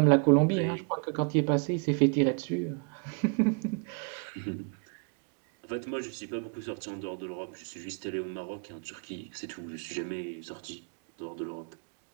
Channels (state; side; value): quieter; left; 37.6 dB